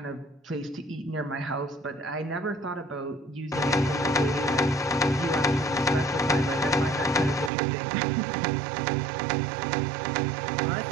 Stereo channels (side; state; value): left; drops out; at 7.5 s